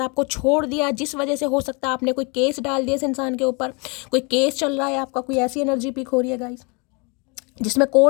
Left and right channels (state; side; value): quieter; right; 31.7 dB